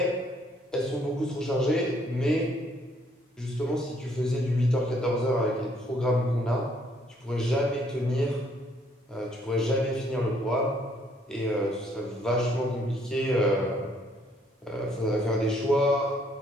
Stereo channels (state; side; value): normal; both; correlation 0.66